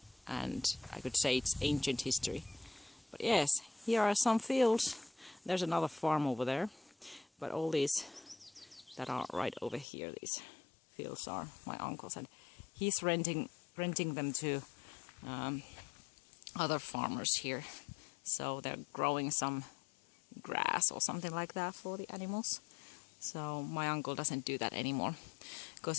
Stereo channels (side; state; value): right; drops out; at 9.9 s